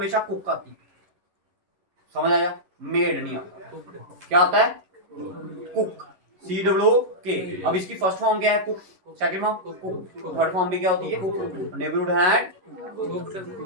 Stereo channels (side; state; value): left; late; 11 ms